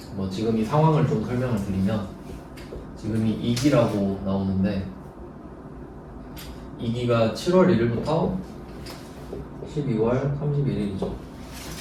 뭐 지금 이 상황을 좀 설명을 드리면, 지금이 2기라고 나오는데 2기가 7월 1일부터 12월 31일이죠.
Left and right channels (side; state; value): both; identical; correlation 1.00